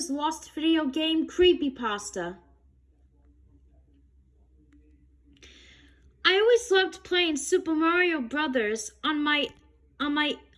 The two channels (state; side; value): identical; both; correlation 1.00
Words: lost video game creepypasta. I always loved playing Super Mario Brothers on my